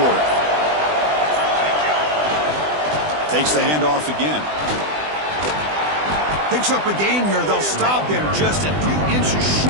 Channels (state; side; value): late; left; 20 ms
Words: Takes the handoff again. Picks up a gain here. They'll stop him just a few inches